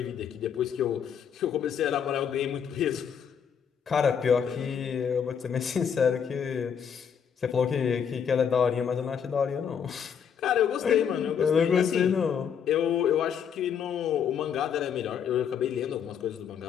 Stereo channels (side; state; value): right; quieter; 7.6 dB